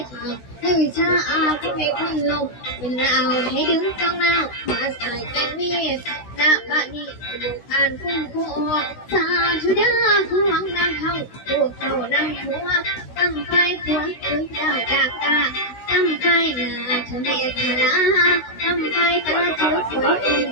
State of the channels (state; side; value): late; right; 16 ms